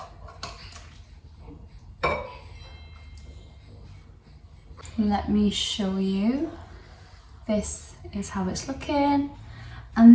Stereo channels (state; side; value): identical; both; correlation 1.00